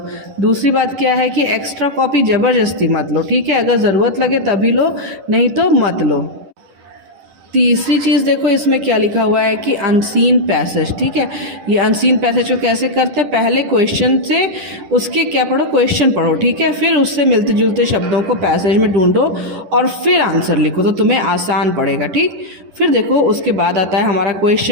दूसरी बात क्या है कि एक्स्ट्रा कॉपी ज़बरदस्ती मत लो, ठीक है। अगर ज़रूरत लगे तभी लो, नहीं तो मत लो। तीसरी चीज़ देखो, इसमें क्या लिखा हुआ है कि अनसीन पैसेज, ठीक है। ये अनसीन पैसेज को कैसे करते हैं, पहले क्वेश्चन से उसके क्या पढ़ो, क्वेश्चन पढ़ो, ठीक है। फिर उससे मिलते जुलते शब्दों को पैसेज में ढूंढो और फिर आंसर लिखो, तो तुम्हें आसान पड़ेगा, ठीक। फिर देखो उसके बाद आता है हमारा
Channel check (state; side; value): late; left; 10 ms